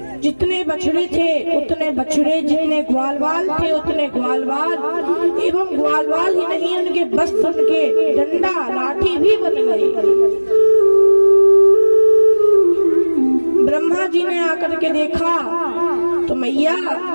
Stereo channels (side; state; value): both; inverted; correlation -1.00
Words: जितने बछड़े थे उतने बछड़े, जितने ग्वालवाल थे उतने ग्वालवाल, एवं ग्वालवाल ही नहीं उनके वस्त्र, उनके डंडा लाठी भी बन गए। ब्रह्मा जी ने आकर के देखा तो मैया